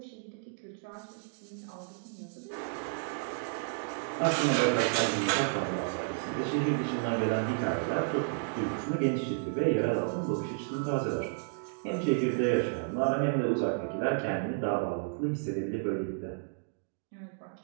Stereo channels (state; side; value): silent; left; digital silence